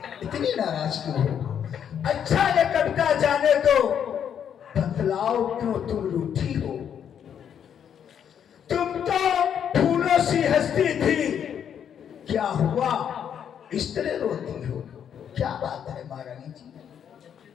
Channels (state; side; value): quieter; right; 8.6 dB